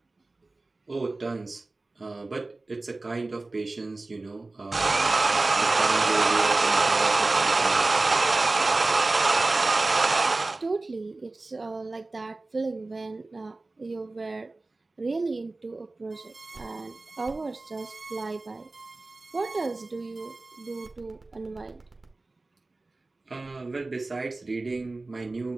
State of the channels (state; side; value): quieter; left; 3.2 dB